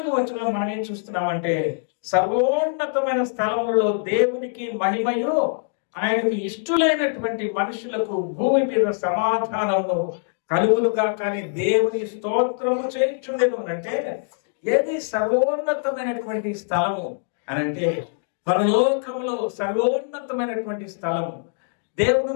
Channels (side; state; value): right; silent; digital silence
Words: వచనంలో మనం ఏం చూస్తున్నామంటే, సర్వోన్నతమైన స్థలములలో దేవునికి మహిమయు, ఆయనకు ఇష్టలైనటువంటి మనుషులకు భూమి మీద సమాధానము కలుగులుగా. కానీ దేవుని స్తోత్రము చేయించుండెను అంటే, ఏది సర్వోన్నతమైనటువంటి స్థలము అని అంటే, పరలోకములో సర్వోన్నతమైనటువంటి స్థలము. దేవుడు